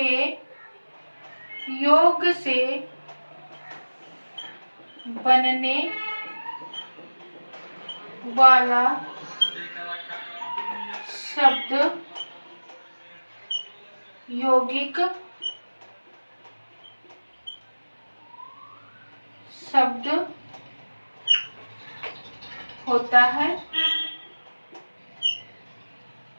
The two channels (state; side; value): inverted; both; correlation -1.00